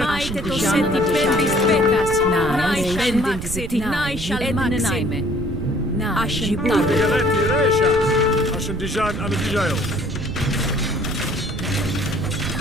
maite to seti pendis betas. Nai maxit, nai shall maxime. Ascendijan. Ascendijan anadijayo.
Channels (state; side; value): noise; right; rumble, 6 dB below the sound